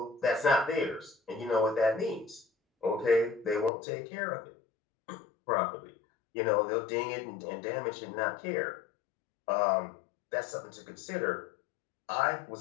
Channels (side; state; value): right; drops out; at 3.7 s